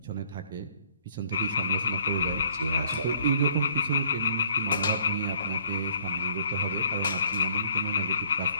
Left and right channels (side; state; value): both; inverted; correlation -0.61